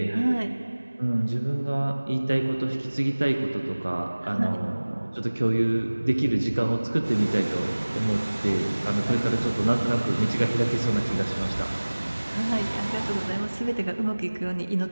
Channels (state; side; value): inverted; both; correlation -1.00